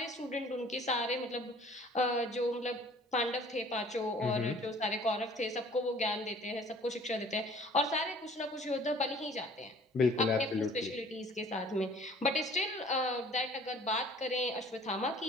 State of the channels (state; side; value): normal; both; correlation 0.52